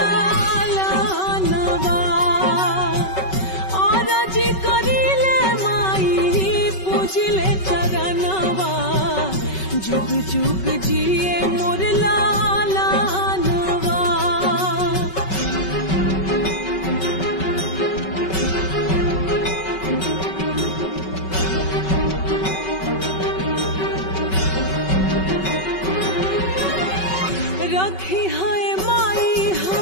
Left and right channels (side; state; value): right; late; 5.3 ms